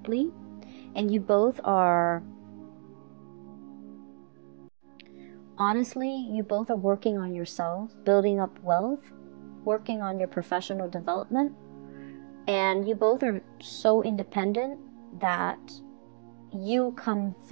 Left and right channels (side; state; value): left; silent; digital silence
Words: And you both are, honestly, you both are working on yourself, building up wealth, working on your professional development. And you both are so independent that you come